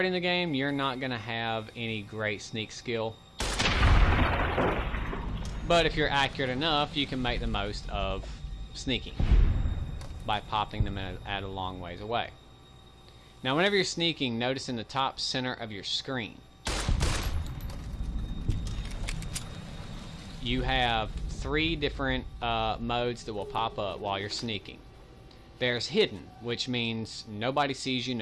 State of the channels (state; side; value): identical; both; correlation 1.00